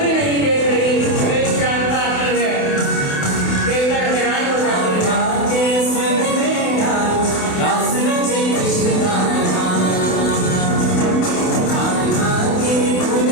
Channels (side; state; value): right; late; 28 ms